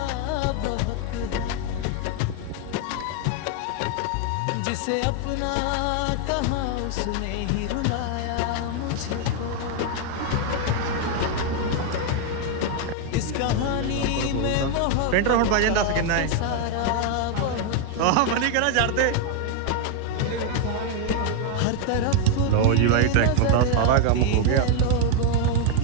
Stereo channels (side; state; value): both; different; correlation 0.01